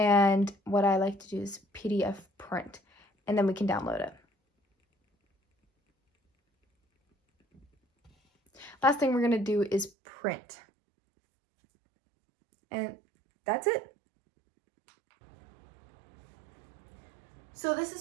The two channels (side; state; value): left; drops out; at 9.9 s